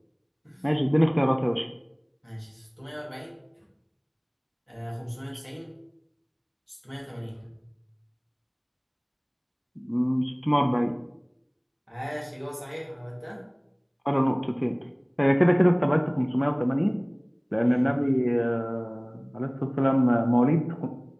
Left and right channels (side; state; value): both; identical; correlation 1.00